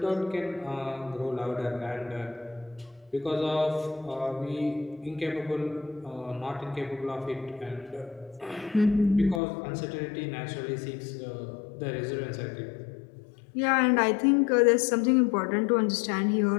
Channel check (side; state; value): right; drops out; at 9.4 s